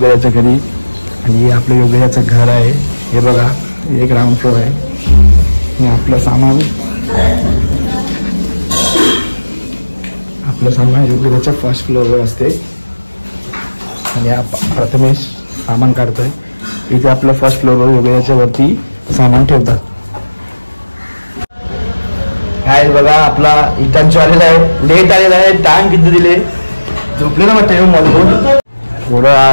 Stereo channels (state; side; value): inverted; both; correlation -1.00